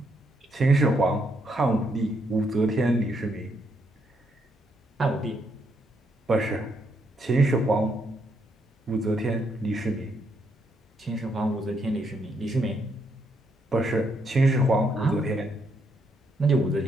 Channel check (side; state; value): both; normal; correlation 0.75